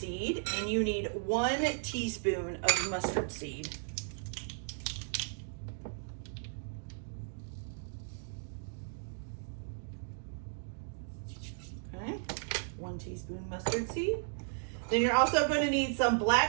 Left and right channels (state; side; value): silent; left; digital silence